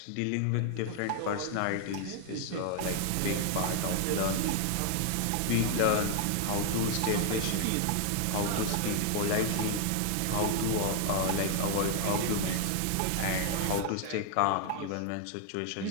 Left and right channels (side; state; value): both; different; correlation 0.00